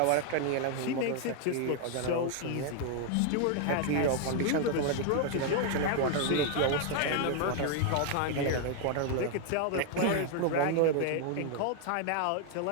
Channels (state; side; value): different; both; correlation 0.00